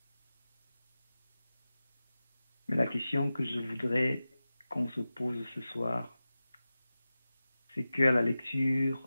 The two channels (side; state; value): both; inverted; correlation -0.94